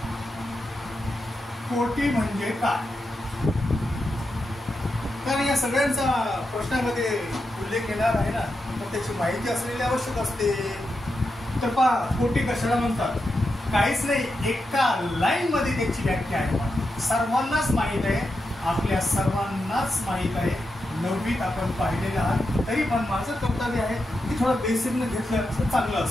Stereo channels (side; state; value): both; normal; correlation 0.87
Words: कोटी म्हणजे काय? कारण या सगळ्यांचा प्रश्नामध्ये उल्लेख येणार आहे ना, तर त्याची माहिती असलेली आवश्यक असते. तर पहा कोटी कशाला म्हणतात? काहीच नाही, एका लाईन मध्ये त्याची व्याख्या आहे. सर्वांनाच माहित आहे, आपल्या सर्वांनाच माहित आहे. 9वीत आपण पाहिलेलं आहात, तरी पण माझं कर्तव्य आहे की थोडं बेसिकनं घेतलं तर चांगलं